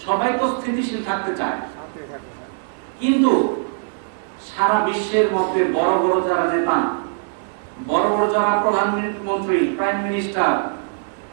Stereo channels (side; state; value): left; silent; digital silence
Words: সবাই তো স্থিতিশীল থাকতে চায়। কিন্তু সারা বিশ্বের মধ্যে বড় বড় যারা নেতা, বড় বড় যারা প্রধানমন্ত্রী, প্রাইম মিনিস্টার,